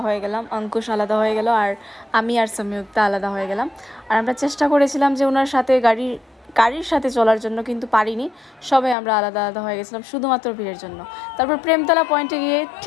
হয়ে গেলাম, অঙ্কুশ আলাদা হয়ে গেল আর আমি আর সংযুক্তা আলাদা হয়ে গেলাম। আর আমরা চেষ্টা করেছিলাম যে ওনার সাথে গাড়ির সাথে চলার জন্য, কিন্তু পারিনি। সবাই আমরা আলাদা আলাদা হয়ে গেছিলাম শুধুমাত্র ভিড়ের জন্য। তারপর প্রেমতলা পয়েন্টে গিয়ে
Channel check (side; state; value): right; drops out; at 9.0 s